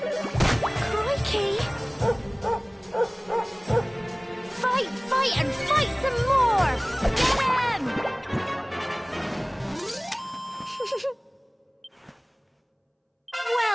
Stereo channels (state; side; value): identical; both; correlation 1.00